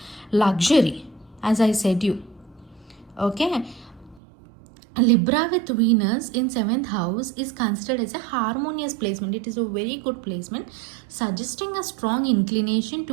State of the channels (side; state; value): left; drops out; at 4.2 s